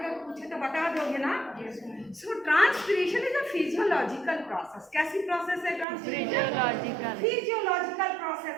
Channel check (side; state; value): left; drops out; at 5.9 s